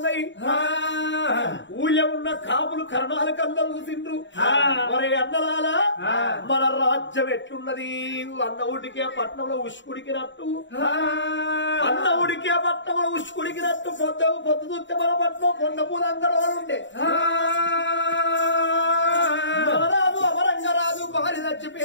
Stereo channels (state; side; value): late; right; 0.54 ms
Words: ఊళ్ళో ఉన్న కాపులు కరణాలు కళ్ళలు చూసిండ్రు మరి అన్నలాల మన రాజ్యం ఎట్లున్నది అన్న ఊడికే పట్నంలో ఉష్కుడికినట్టు అన్న ఊడికే పట్నంలో ఉష్కుడికినట్టు పొద్దు చూస్తే మన పట్నం కొండ పూలందరూ ఉండే మహారాజు అమరంగరాజు భార్య